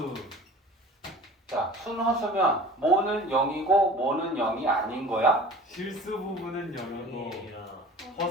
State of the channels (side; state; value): both; normal; correlation 0.42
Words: 자, 순허수면 뭐는 0이고 뭐는 0이 아닌 거야? 실수 부분은 0이고